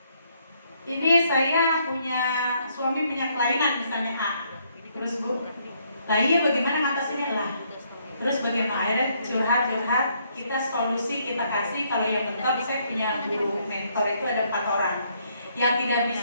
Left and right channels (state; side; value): inverted; both; correlation -0.70